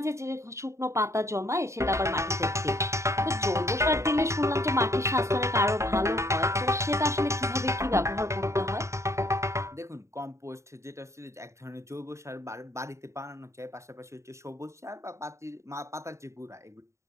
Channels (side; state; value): left; late; 0.14 ms